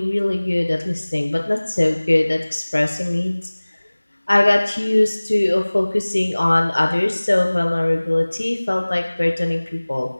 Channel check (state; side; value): inverted; both; correlation -1.00